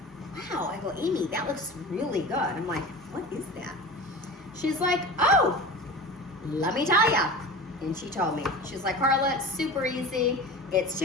wow, I go, Amy, that looks really good. I'm like, what is that? She's like, oh, let me tell ya. And she told me, she's like, Carla, it's super easy. It's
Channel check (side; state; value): both; normal; correlation 0.33